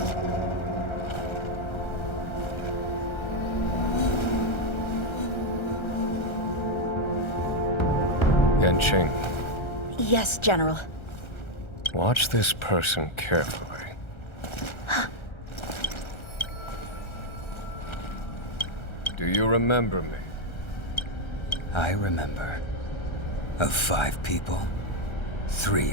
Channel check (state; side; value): late; right; 1.3 ms